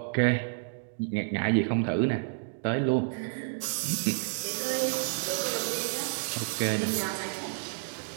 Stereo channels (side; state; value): left; silent; digital silence